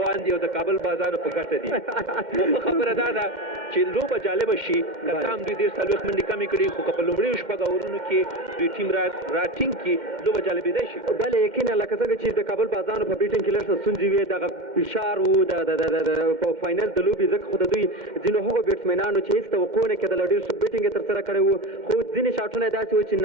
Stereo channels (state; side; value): late; left; 2.1 ms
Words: دي او د کابل بازار په ګټه دي. نو خبره دا ده چې لوبه جالبه شي که څه هم دوی ډېر څلوېښت منډې کمې کړي خو که په لومړیو شپږ اورونو کې دوی ټیم را ټینګ کړي لوبه جالبېدی شي. بله یقینا لکه څنګه چې د کابل بازانو په بیټینګ کې لږ څه ستونزې وې دغه فشار و په فاینل د لوبې ځکه خو د دوی ځینو هغو بیټسمینانو چې هېڅ توقع نه کېدله ډېر ښه بیټینګ یې ترسره کړی و خو ځینې شاټونه یې داسې و چې